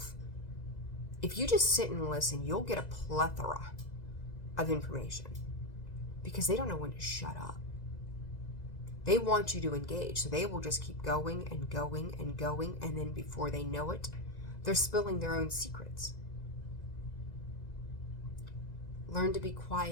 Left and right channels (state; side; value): late; right; 2.0 ms